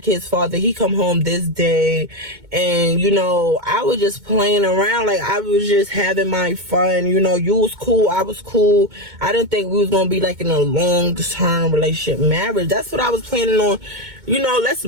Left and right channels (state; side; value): late; left; 2.2 ms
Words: kid's father. He come home this day, and you know, I was just playing around. Like, I was just having my fun. You know, you was cool, I was cool. I didn't think we was gonna be like in a long-term relationship, marriage. That's what I was planning on. You know, let's